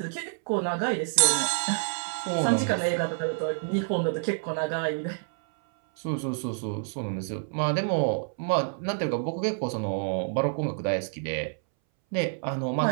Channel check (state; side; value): silent; left; 59 dB below the other